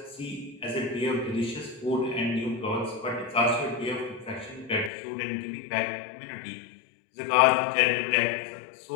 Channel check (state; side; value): drops out; right; at 4.9 s